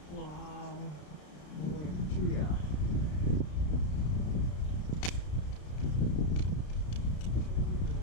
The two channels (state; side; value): late; right; 33 ms